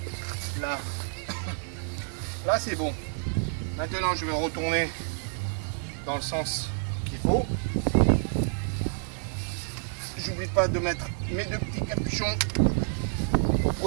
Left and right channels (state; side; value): silent; left; 59 dB below the other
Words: là c'est bon. Maintenant je vais retourner dans le sens qu'il faut. J'oublie pas de mettre mes deux petits capuchons pour